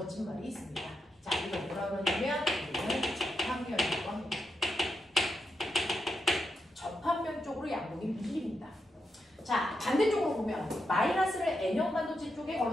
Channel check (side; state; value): both; normal; correlation 0.85